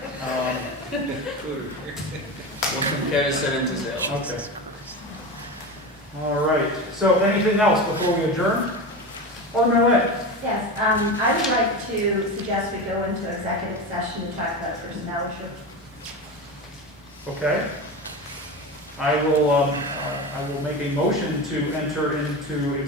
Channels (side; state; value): both; normal; correlation 0.24